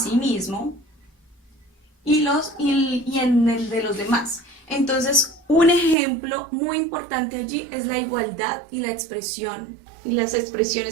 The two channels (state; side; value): drops out; left; at 6.0 s